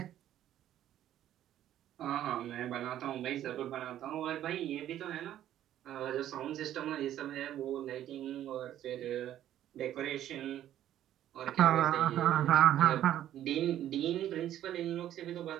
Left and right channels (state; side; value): quieter; left; 11.9 dB